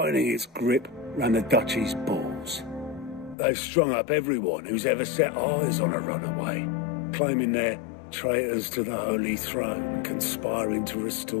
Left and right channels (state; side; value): drops out; right; at 3.4 s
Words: its grip round the Duchy's balls. They've strung up everyone who's ever set eyes on a runaway, claiming they're traitors to the Holy Throne, conspiring to